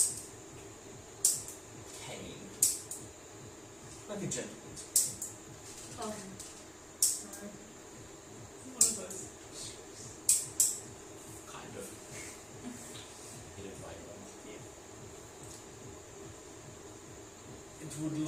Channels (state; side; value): noise; right; rumble, 27 dB below the sound